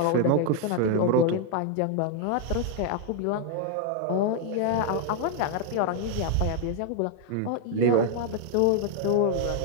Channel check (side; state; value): both; different; correlation 0.00